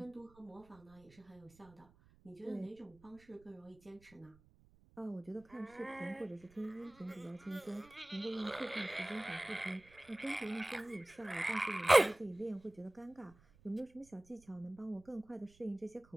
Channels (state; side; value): noise; right; rumble, 27 dB below the sound